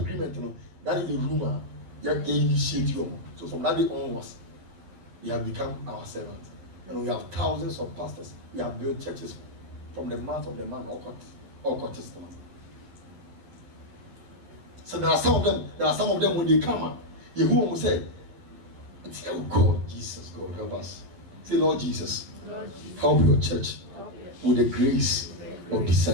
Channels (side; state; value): left; late; 11 ms